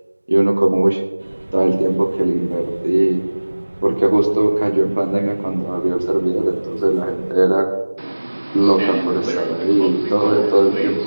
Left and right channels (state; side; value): inverted; both; correlation -1.00